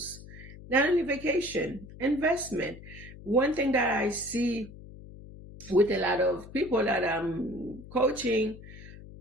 Not only vacation, investment. One thing that I see with a lot of people that I'm coaching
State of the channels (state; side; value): noise; left; hum, 16 dB below the sound